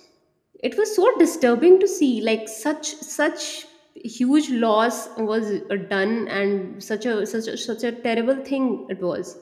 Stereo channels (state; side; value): identical; both; correlation 1.00